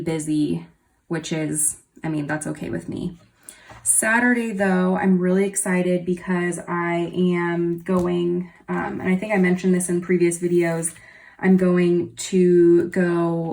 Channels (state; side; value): identical; both; correlation 1.00